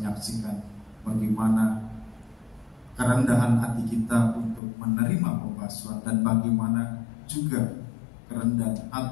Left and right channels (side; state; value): right; drops out; at 4.6 s